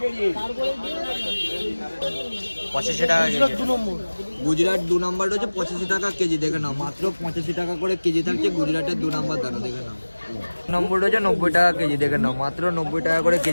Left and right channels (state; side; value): inverted; both; correlation -1.00